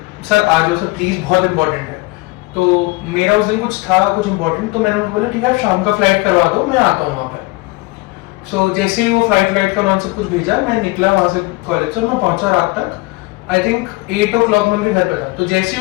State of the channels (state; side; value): quieter; right; 23.3 dB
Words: सर आ जाओ सर प्लीज, बहुत इंपॉर्टेंट है. तो मेरा उस दिन कुछ था, कुछ इंपॉर्टेंट. तो मैंने उनको बोला ठीक है आप शाम का फ्लाइट करवा दो, मैं आता हूँ वहाँ पे. सो जैसे ही वो फ्लाइट का उन्होंने सब कुछ भेजा, मैं निकला वहाँ से कॉलेज से. मैं पहुंचा रात तक, आई थिंक 8 o'clock में उनके घर पे था. तो जैसे